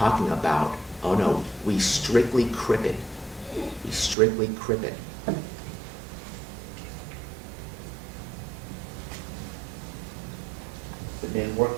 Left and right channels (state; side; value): drops out; left; at 4.2 s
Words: about, oh no, we strictly crip it. We strictly crip it. The men work